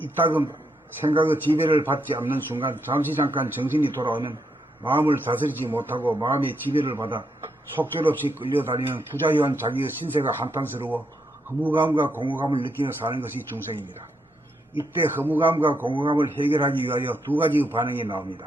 생각의 지배를 받지 않는 순간 잠깐 정신이 돌아오면 마음을 다스리지 못하고 마음의 지배를 받아 속절없이 끌려다니는 부자유한 자기의 신세가 한탄스러워 허무감과 공허감을 느끼며 사는 것이 중생입니다. 이때 허무감과 공허감을 해결하기 위하여 2가지의 반응이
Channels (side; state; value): both; normal; correlation 0.79